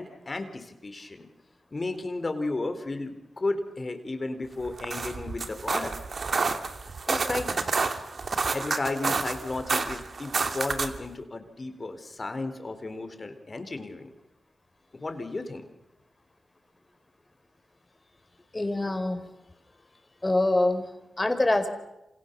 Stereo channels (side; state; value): both; normal; correlation 0.93